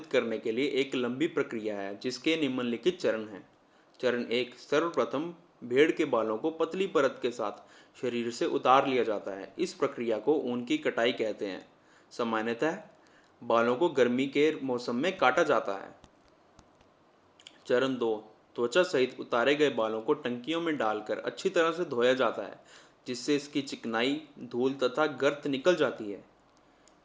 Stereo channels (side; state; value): both; identical; correlation 1.00